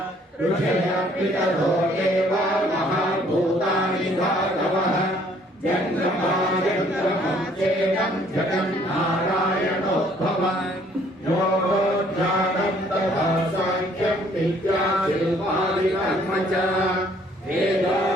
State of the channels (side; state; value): both; normal; correlation 0.61